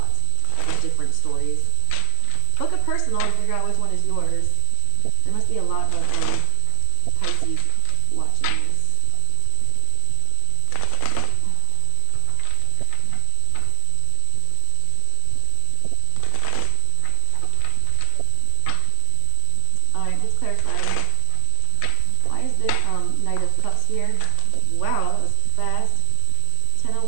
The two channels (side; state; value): both; different; correlation 0.00